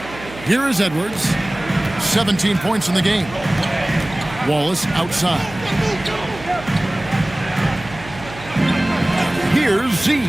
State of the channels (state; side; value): noise; right; hum, 15 dB below the sound